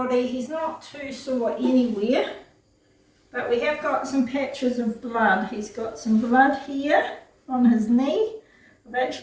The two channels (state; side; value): identical; both; correlation 1.00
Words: He's not too sore anywhere, but we have got some patches of blood. He's got some blood here on his knee. I've